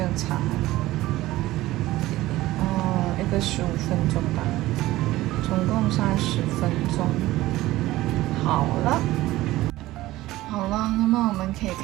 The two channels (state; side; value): quieter; left; 16.9 dB